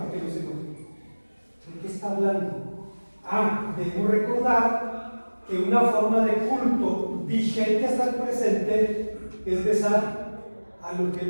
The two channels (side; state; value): both; inverted; correlation -1.00